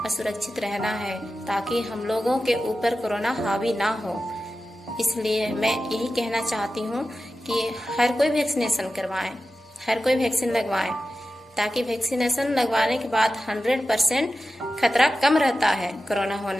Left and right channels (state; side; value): normal; both; correlation 0.93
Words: सुरक्षित रहना है ताकि हम लोगों के ऊपर कोरोना हावी ना हो। इसलिए मैं यही कहना चाहती हूँ कि हर कोई वैक्सीनेशन करवाएं, हर कोई वैक्सीन लगवाएं, ताकि वैक्सीनेशन लगवाने के बाद 100% खतरा कम रहता है कोरोना